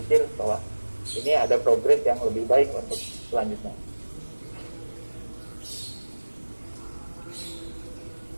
bahwa ini ada progres yang lebih baik untuk selanjutnya.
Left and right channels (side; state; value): both; inverted; correlation -1.00